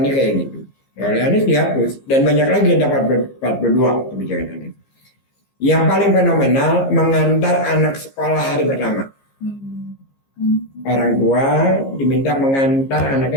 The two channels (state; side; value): late; right; 15 ms